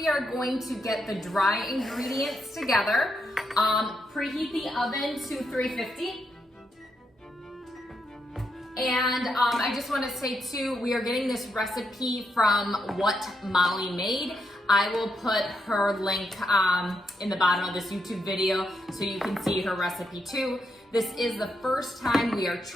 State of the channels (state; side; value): normal; both; correlation 0.81